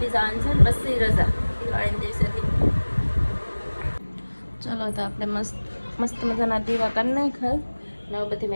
દી જવાનું છે ને, પછી રજા દિવાળીના દિવસેથી. ચલો તો આપણે મસ્ત મજાના દીવા કરી નાખ્યા. ને બધી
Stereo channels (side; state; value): both; inverted; correlation -1.00